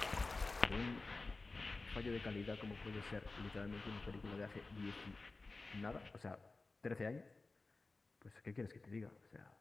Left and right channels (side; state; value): right; quieter; 3.5 dB